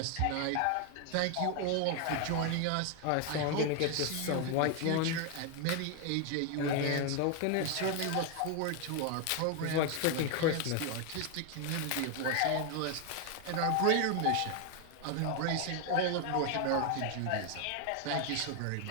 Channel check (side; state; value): both; different; correlation 0.01